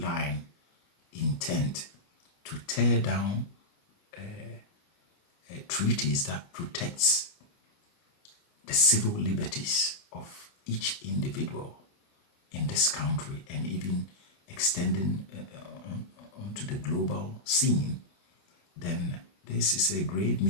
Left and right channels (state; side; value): late; right; 29 ms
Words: intent to tear down treaties that protects the civil liberties of each individual in this country and even extending onto the global scene, then this is a grave